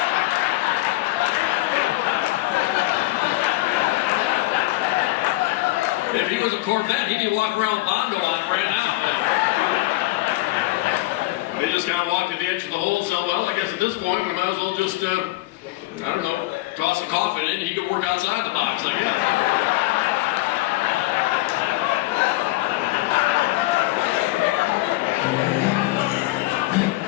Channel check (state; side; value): quieter; right; 19.3 dB